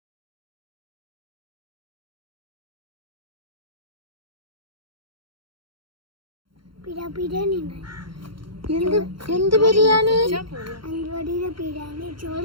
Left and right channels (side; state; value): left; late; 0.73 ms